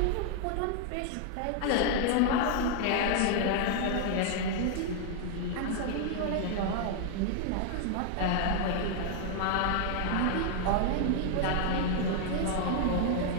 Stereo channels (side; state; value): both; different; correlation 0.00